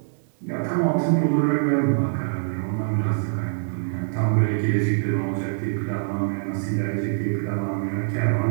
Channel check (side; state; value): left; silent; digital silence